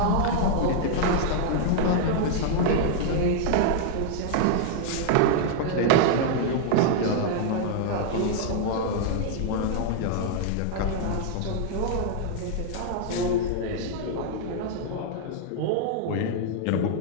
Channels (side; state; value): both; different; correlation -0.01